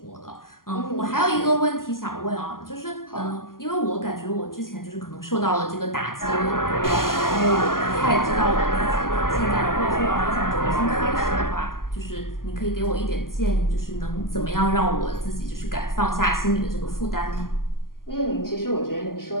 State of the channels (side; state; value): right; late; 0.91 ms